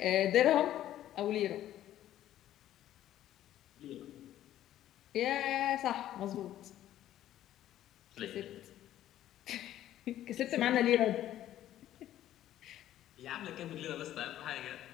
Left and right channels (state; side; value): quieter; right; 12.6 dB